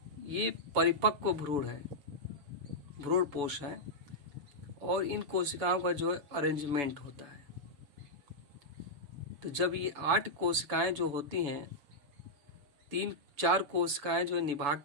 ये परिपक्व भ्रूण है, भ्रूण पोष है, और इन कोशिकाओं का जो है अरेंजमेंट होता है। तो जब ये 8 कोशिकाएं जो होती हैं, 4 कोशिकाएं जो है निभाग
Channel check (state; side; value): late; left; 7.0 ms